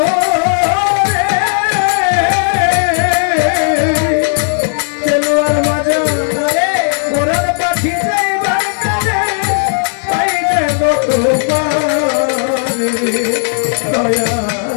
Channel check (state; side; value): silent; right; digital silence